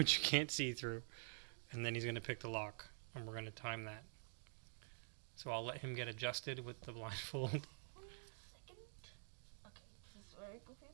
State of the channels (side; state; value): left; silent; digital silence